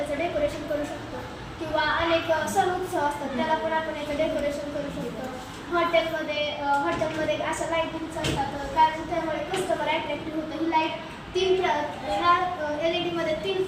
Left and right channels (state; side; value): identical; both; correlation 1.00